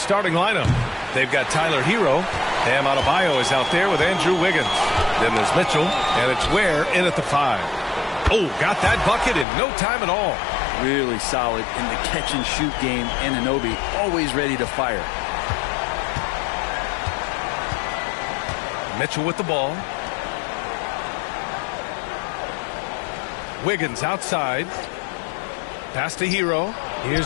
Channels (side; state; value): right; drops out; at 9.5 s